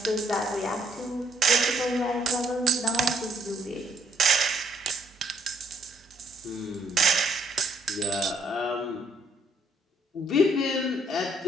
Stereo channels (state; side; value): normal; both; correlation 0.68